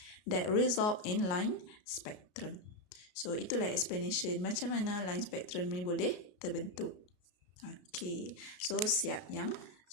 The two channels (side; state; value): right; late; 33 ms